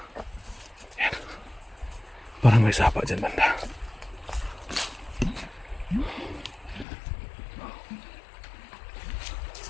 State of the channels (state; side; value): drops out; right; at 6.9 s